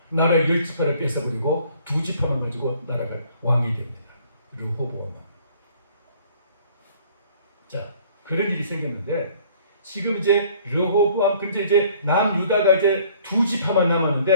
나라의 10지파를 뺏어버리고 2지파만 가지고 나라가 왕이 됩니다. 르호보암 왕. 자, 그런 일이 생겼는데 지금 이제 르호보암 근데 이제 남유다가 이제 2지파만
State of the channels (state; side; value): inverted; both; correlation -0.56